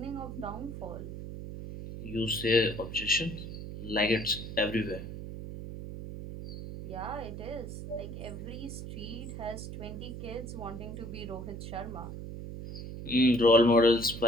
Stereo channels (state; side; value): noise; right; hum, 9 dB below the sound